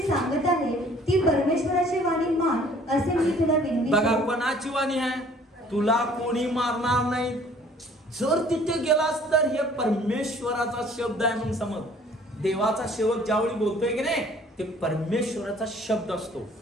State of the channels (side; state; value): both; normal; correlation 0.55